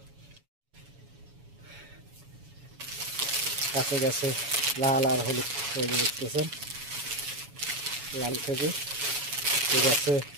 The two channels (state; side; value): late; left; 7.1 ms